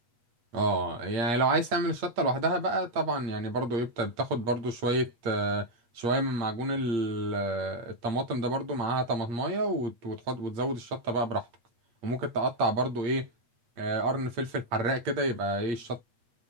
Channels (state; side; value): late; left; 8.8 ms